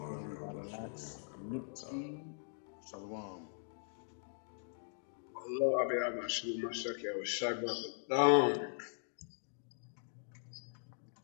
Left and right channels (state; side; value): silent; right; digital silence